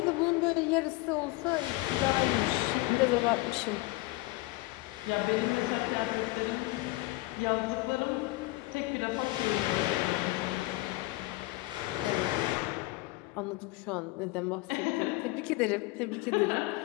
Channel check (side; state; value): right; quieter; 20.5 dB